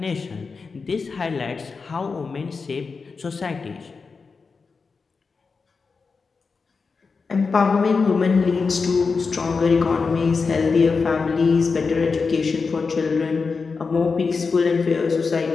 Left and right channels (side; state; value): right; quieter; 4.8 dB